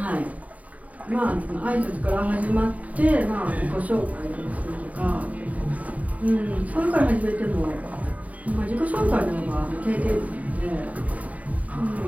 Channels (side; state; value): left; late; 0.070 ms